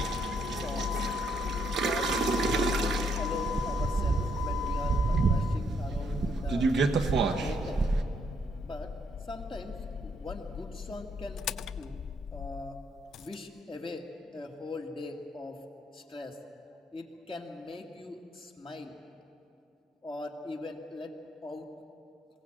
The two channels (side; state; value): both; normal; correlation 0.72